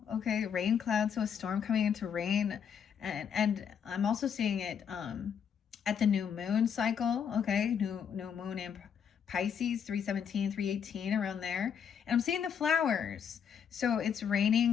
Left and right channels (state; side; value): quieter; right; 7.6 dB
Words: Okay, rain clouds, so a storm coming into rain. And I'm also seeing it at the new moon cycle. Okay, new moon in Pisces, 317, 318, around there. And I'm seeing the flowers. So it's